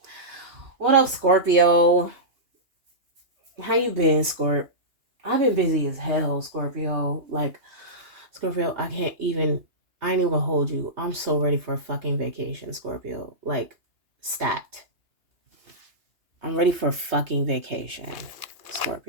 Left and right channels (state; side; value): late; left; 2.9 ms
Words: What up, Scorpio? How you been, Scorp? I've been busy as hell, Scorpio. Like, Scorpio, I ain't even gonna hold you. I'm so ready for a fucking vacation, Scorpio. Like, stat. I'm ready for a fucking vacation,